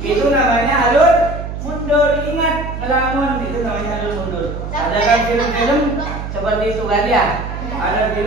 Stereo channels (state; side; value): noise; right; hum, 7 dB below the sound